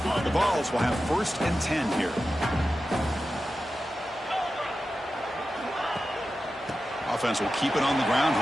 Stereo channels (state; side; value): normal; both; correlation 0.92